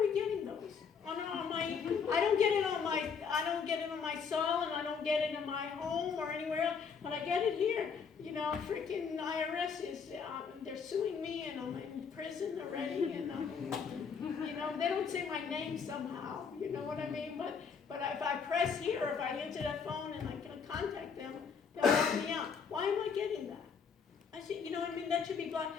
getting those? I don't get it on my cell, and I don't get it in my home or anywhere else, but I get it here. You know, freaking IRS is, they're suing me, and I'm in prison already, and you know, they don't say my name somehow, you know what I mean? But if I press here, or if I answer that phone and I can contact them, they'll help me out. Why am I getting that? I see, you know what I mean, that should be blocked.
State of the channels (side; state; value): right; quieter; 6.1 dB